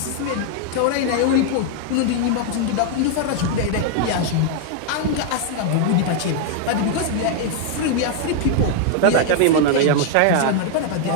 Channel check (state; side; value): different; both; correlation 0.00